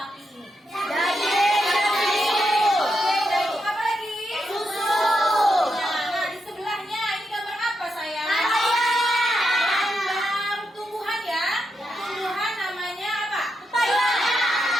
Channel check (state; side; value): normal; both; correlation 0.83